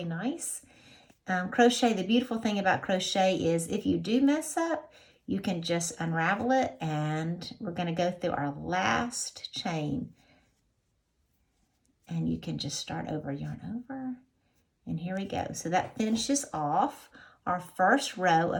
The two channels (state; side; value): identical; both; correlation 1.00